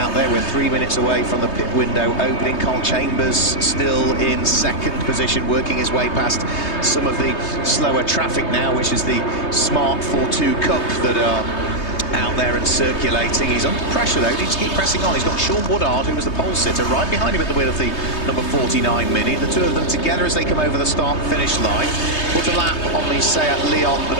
there. We're 3 minutes away from the pit window opening. Carl Chambers still in second position, working his way past some of the slower traffic now, which is the Smart 4-2 Cup that are out there and circulating. He's under pressure though, needs to keep pressing on. He's got Sean Woodard, who was the pole sitter, right behind him at the wheel of the number 49 Mini. The two of them together as they come over the start-finish line. Put a lap on the Seat Leon, the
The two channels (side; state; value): right; late; 3.2 ms